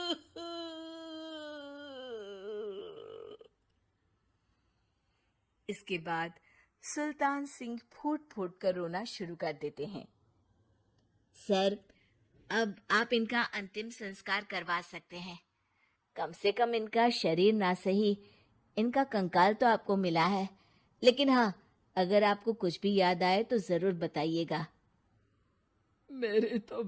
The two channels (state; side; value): identical; both; correlation 1.00